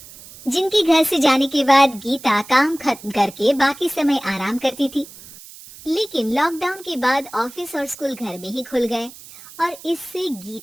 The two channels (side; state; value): right; noise; hiss, 18 dB below the sound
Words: जिनके घर से जाने के बाद गीता काम खत्म करके बाकी समय आराम करती थी। लेकिन लॉकडाउन के बाद ऑफिस और स्कूल घर में ही खुल गए और इससे